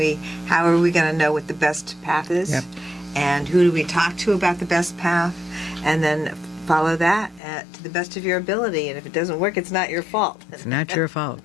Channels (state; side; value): drops out; right; at 7.4 s